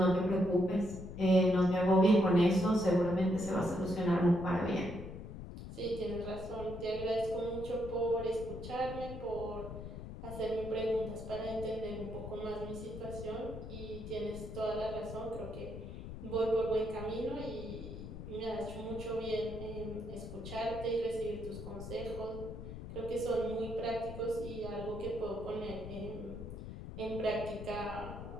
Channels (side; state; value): left; noise; rumble, 10 dB below the sound